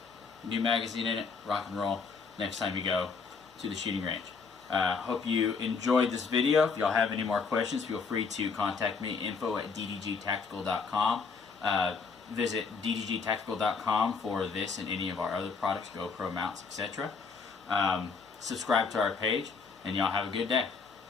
new magazine in it, rock and roll next time you go to the shooting range. Hope you enjoyed this video. If y'all have any more questions, feel free to contact me, info@ddgtactical.com. Visit ddgtactical.com for this and any of our other products, GoPro mounts, etc. Subscribe to our page, and y'all have a good day.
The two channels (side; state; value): right; quieter; 5.0 dB